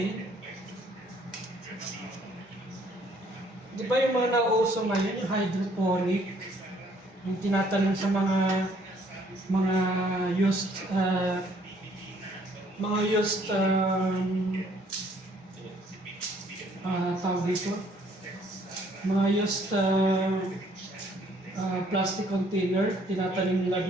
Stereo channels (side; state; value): both; normal; correlation 0.63